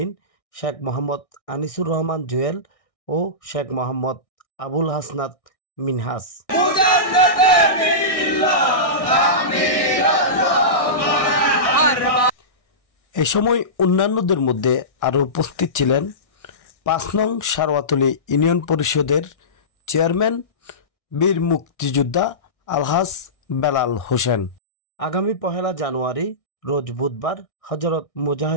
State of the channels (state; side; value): late; right; 1.6 ms